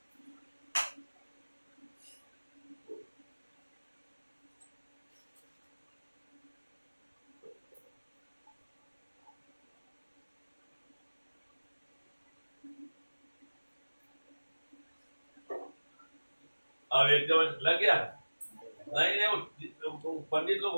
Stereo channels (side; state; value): both; inverted; correlation -1.00